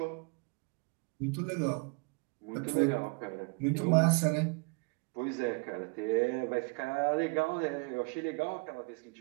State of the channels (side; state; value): left; quieter; 32.8 dB